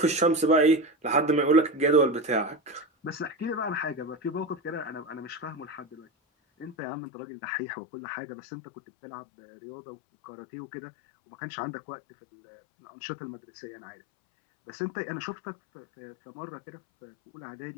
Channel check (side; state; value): right; drops out; at 6.8 s